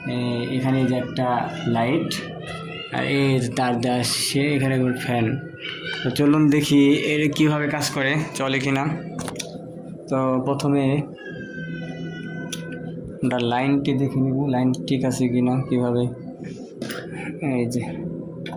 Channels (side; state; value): both; identical; correlation 1.00